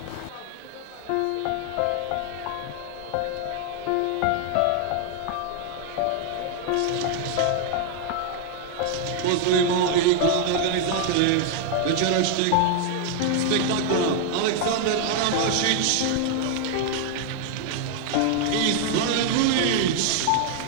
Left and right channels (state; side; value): different; both; correlation 0.00